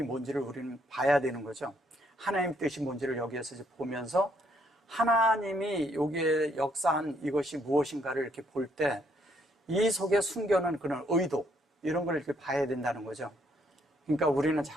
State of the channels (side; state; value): both; normal; correlation 0.70